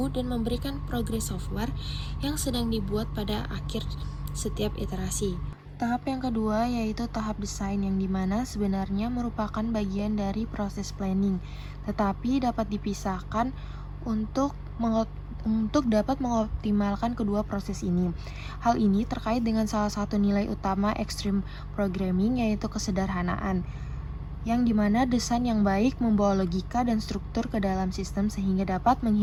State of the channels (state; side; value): identical; both; correlation 1.00